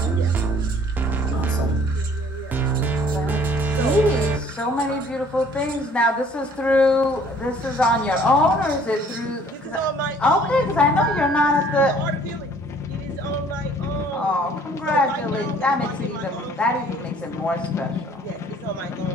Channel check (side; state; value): both; normal; correlation 0.56